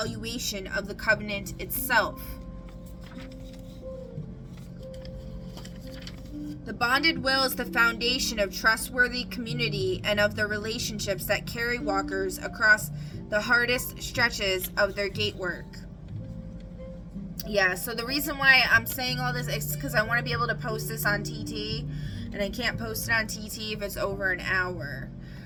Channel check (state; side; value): identical; both; correlation 1.00